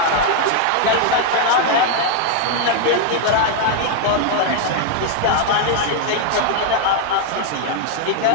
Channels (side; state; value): both; different; correlation 0.00